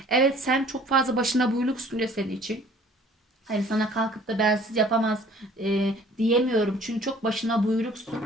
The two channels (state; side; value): normal; both; correlation 0.53